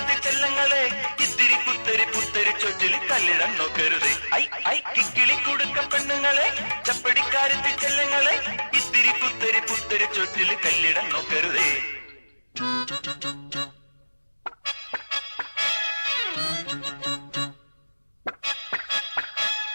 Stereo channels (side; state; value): both; inverted; correlation -1.00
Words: ചെല്ലങ്ങളെ ഇത്തിരി കുത്തരി പുത്തരി ചൊറ്റിൽ കല്ലിടം നോക്കരുതേ. ഐ ഐ കിക്കിളി കുടുക്ക പെണ്ണുങ്ങളെ ചപ്പടിക്കാരത്തി ചെല്ലങ്ങളെ ഇത്തിരി കുത്തരി പുത്തരി ചൊറ്റിൽ കല്ലിടം നോക്കരുതേ.